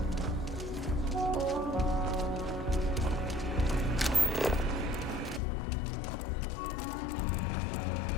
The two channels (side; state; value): right; drops out; at 5.4 s